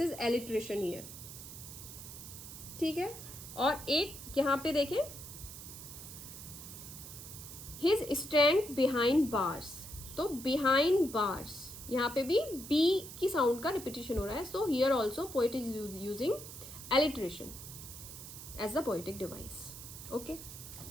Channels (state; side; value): noise; right; hiss, 12 dB below the sound